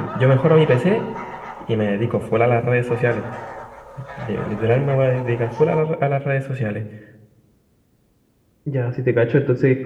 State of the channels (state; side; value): identical; both; correlation 1.00